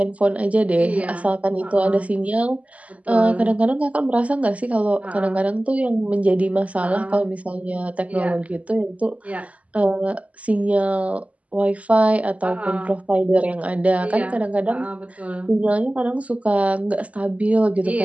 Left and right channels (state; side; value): late; left; 0.068 ms